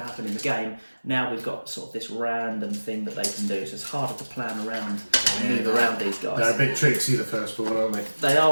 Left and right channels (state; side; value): inverted; both; correlation -1.00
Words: to happen in the game. Now we've got sort of this random thing that they can do, so it's harder to plan around and move around these guys. They're a bit tricksy, the firstborn, aren't they? They